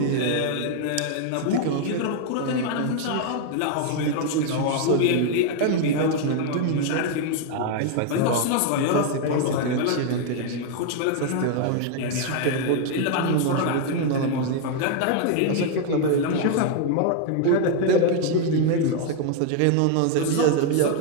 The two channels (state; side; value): different; both; correlation 0.00